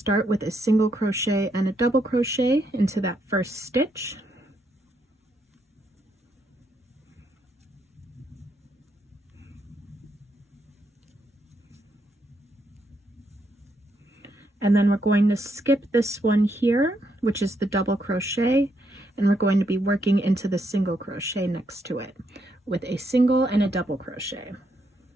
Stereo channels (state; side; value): normal; both; correlation 0.77